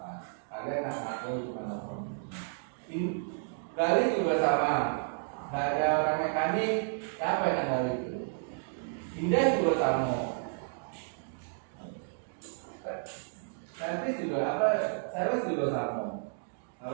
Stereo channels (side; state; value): left; silent; digital silence